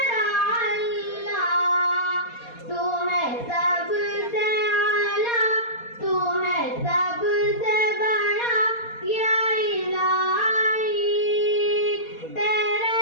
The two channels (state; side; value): late; right; 4.2 ms